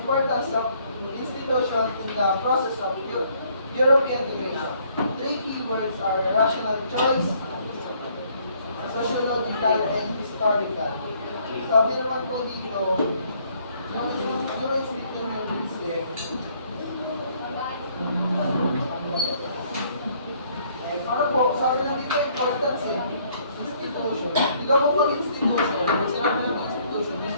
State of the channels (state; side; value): inverted; both; correlation -0.64